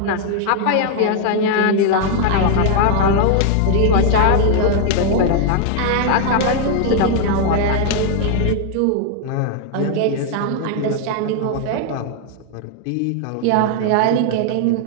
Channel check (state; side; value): different; both; correlation 0.00